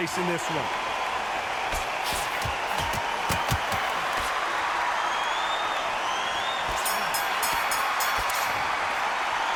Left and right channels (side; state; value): both; identical; correlation 1.00